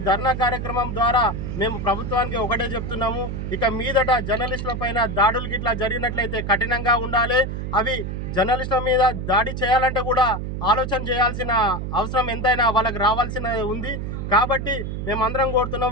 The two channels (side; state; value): right; noise; hum, 5 dB below the sound